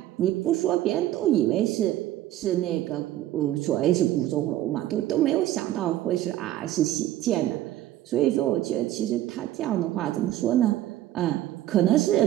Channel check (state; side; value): quieter; left; 13.8 dB